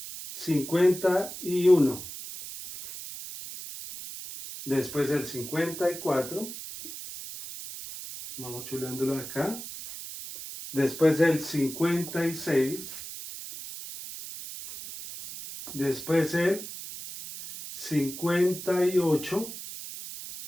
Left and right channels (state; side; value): noise; right; hiss, 10 dB below the sound